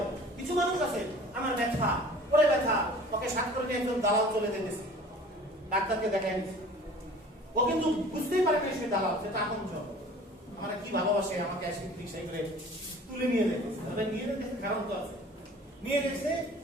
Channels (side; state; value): both; normal; correlation 0.46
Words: কিছু মানুষ আছে আমার ব্যথা, ওরে ব্যথা, ওকে সাত করে নিয়ে একজন দালাল চলে যেতেছে, ডাক্তারকে দেখেন, ও কিন্তু বুঝতেই পারে না সে দালাল, সেটা এখন আমার কি ভালোবাসে, আমাকে অ্যাসিড রিক্সায় করে তুলে নিয়ে যায়, তবে নিয়ে যেতে কারণ তো আছে, নিয়ে গেছে,